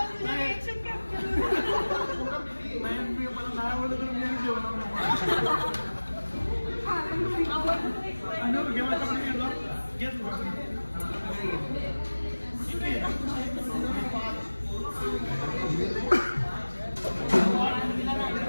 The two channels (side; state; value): both; inverted; correlation -1.00